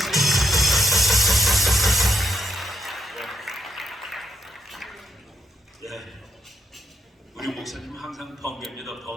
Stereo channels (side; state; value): both; normal; correlation 0.79